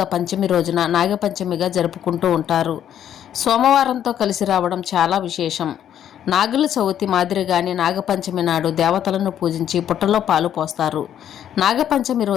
పంచమి రోజున నాగపంచమిగా జరుపుకుంటూ ఉంటారు. సోమవారంతో కలిసి రావడం చాలా విశేషం. నాగుల చవితి మాదిరిగానే నాగపంచమి నాడు దేవతలను పూజించి పుట్టలో పాలు పోస్తారు. నాగపంచమి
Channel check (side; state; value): right; quieter; 10.1 dB